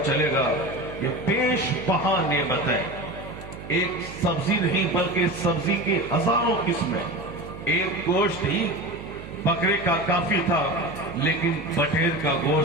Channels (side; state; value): right; noise; hum, 13 dB below the sound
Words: چلے گا یہ بیش بہا نعمتیں، ایک سبزی نہیں بلکہ سبزی کی ہزاروں قسمیں، ایک گوشت ہی بکرے کا کافی تھا، لیکن بٹیر کا